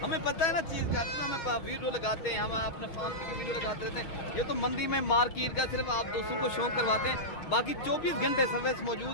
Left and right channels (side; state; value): right; late; 6.4 ms